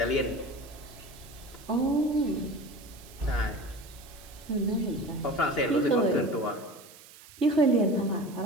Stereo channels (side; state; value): right; noise; hiss, 20 dB below the sound